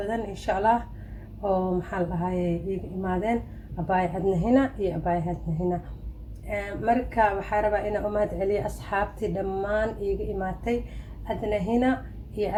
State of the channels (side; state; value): both; identical; correlation 1.00